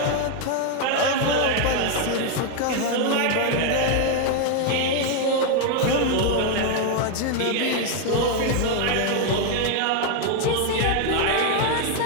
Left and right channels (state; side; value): different; both; correlation 0.01